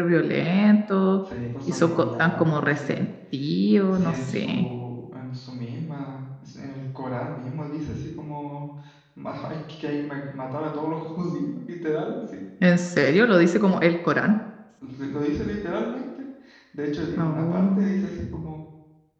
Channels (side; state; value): both; identical; correlation 1.00